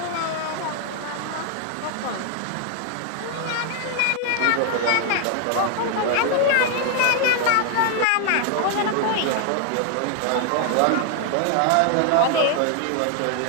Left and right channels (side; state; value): both; different; correlation 0.00